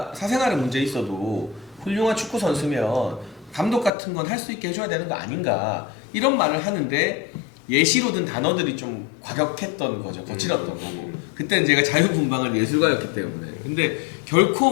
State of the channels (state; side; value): drops out; right; at 3.9 s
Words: 사생활에 문제 있어도 훌륭한 축구 선수면 감독 같은 건 할 수 있게 해줘야 되는 거 아닌가, 이런 말을 하는데 예시로 든 단어들이 좀 과격했던 거죠. 거칠었던 거고. 그때는 제가 자유분방한 예술가였기 때문에. 근데